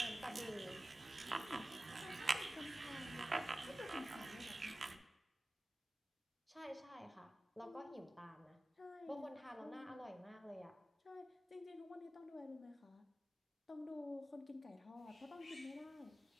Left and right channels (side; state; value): both; normal; correlation 0.95